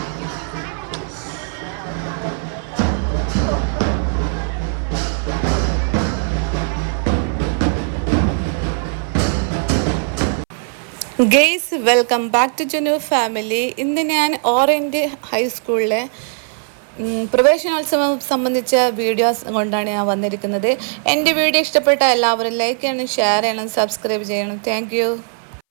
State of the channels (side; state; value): left; silent; 62 dB below the other